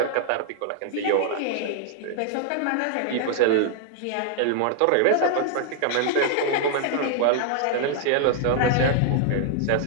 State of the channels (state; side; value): different; both; correlation 0.00